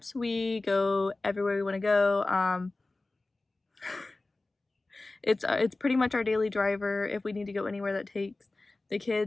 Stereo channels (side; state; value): right; quieter; 3.1 dB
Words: we go everywhere we want to go. It's pretty much our daily driver. If we need to go anywhere that takes the